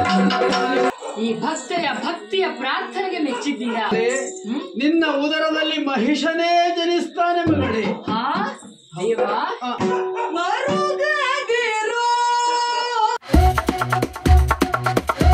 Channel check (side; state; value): both; identical; correlation 1.00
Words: ಈ ಭಕ್ತಿಯ ಪ್ರಾರ್ಥನೆಗೆ ಮೆಚ್ಚಿದ್ದೀರಾ? ನಿನ್ನ ಉದರದಲ್ಲಿ ಮಹಿಷನೇ ಜನಿಸ್ತಾನೆ ಮಗಳೇ. ಹಾ ದೇವಾ,